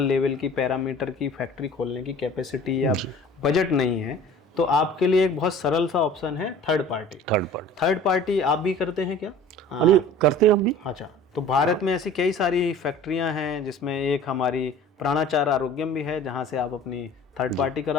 लेवल की पैरामीटर की फैक्ट्री खोलने की कैपेसिटी या बजट नहीं है, तो आपके लिए एक बहुत सरल सा ऑप्शन है थर्ड पार्टी। थर्ड पार्टी आप भी करते हैं क्या? करते हैं हम भी। अच्छा, तो भारत में ऐसी कई सारी फैक्ट्रियां हैं जिसमें एक हमारी प्राणाचार आरोग्यम भी है जहां से आप अपनी थर्ड पार्टी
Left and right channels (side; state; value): both; normal; correlation 0.45